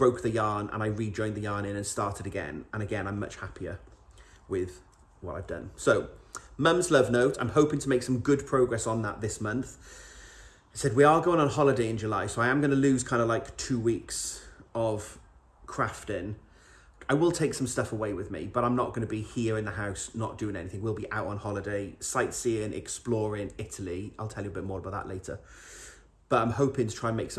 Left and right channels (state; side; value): identical; both; correlation 1.00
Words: the yarn and I rejoined the yarn in and started again. And again, I'm much happier with what I've done. So Mum's love note, I'm hoping to make some good progress on that this month. I said we are going on holiday in July, so I am going to lose kind of like 2 weeks of crafting. I will take some stuff away with me, but I'm not going to be here in the house not doing anything. We'll be out on holiday, sightseeing, exploring Italy. I'll tell you a bit more about that later. But I'm hoping to try and make